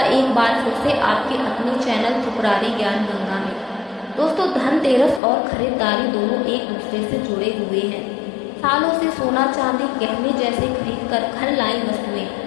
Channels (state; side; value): drops out; right; at 5.2 s